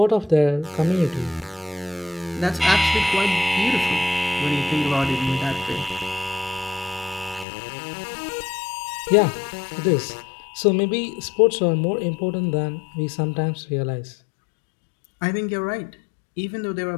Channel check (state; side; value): drops out; right; at 7.5 s